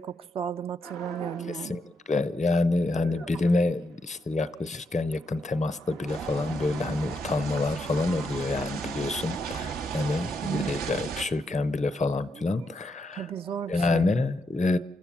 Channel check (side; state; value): both; normal; correlation 0.81